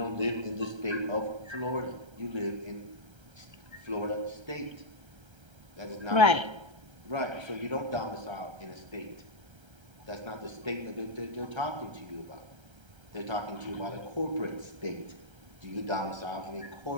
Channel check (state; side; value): late; left; 1.3 ms